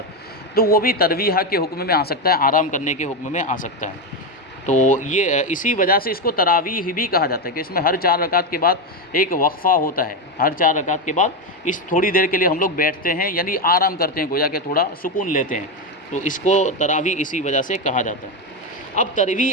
تو وہ بھی ترویحہ کے حکم میں آ سکتا ہے، آرام کرنے کے حکم میں آ سکتا ہے۔ تو یہ اسی وجہ سے اس کو تراویح بھی کہا جاتا ہے کہ اس میں ہر 4 رکعت کے بعد ایک وقفہ ہوتا ہے، ہر 4 رکعت کے بعد اس تھوڑی دیر کے لیے ہم لوگ بیٹھتے ہیں، یعنی آرام کرتے ہیں، گویا کہ تھوڑا سکون لیتے ہیں، تو اس کو تراویح اسی وجہ سے کہا جاتا ہے۔ اب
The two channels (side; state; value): both; normal; correlation 0.11